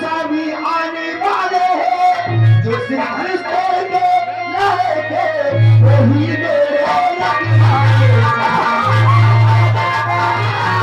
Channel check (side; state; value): both; identical; correlation 1.00